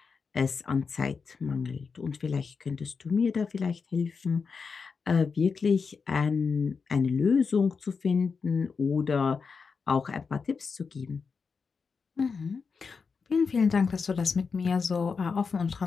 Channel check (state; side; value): quieter; right; 5.2 dB